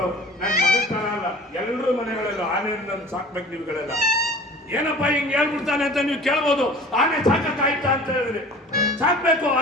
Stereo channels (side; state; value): both; normal; correlation 0.43